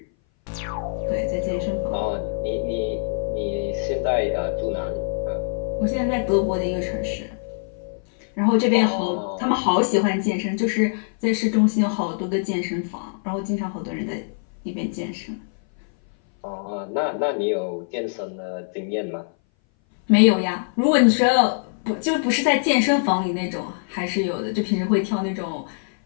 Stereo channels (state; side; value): silent; right; 59 dB below the other